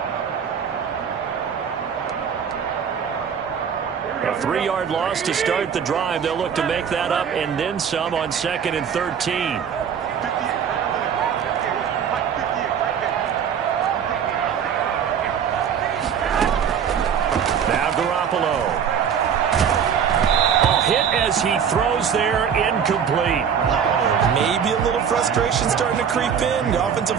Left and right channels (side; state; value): left; quieter; 7.6 dB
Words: A 3-yard loss to start the drive. They'll look to make that up and then some on 2nd and 13. Now Garoppolo. A hit as he throws there, incomplete. Maybe a little frustration starting to creep in. The offensive